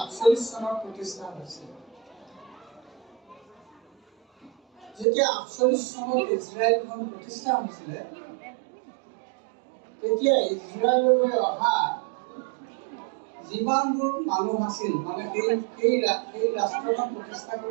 চনত প্ৰতিষ্ঠা হৈছিল। যেতিয়া 48 চনত ইজৰাইলখন প্ৰতিষ্ঠা হৈছিলে তেতিয়া ইজৰাইললৈ অহা যিমানবোৰ মানুহ আছিল, মানে সেই ৰাষ্ট্ৰখন প্ৰতিষ্ঠা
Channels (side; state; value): left; drops out; at 5.1 s